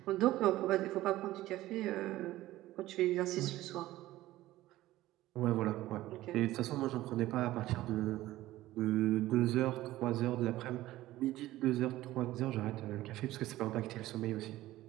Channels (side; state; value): left; quieter; 16.0 dB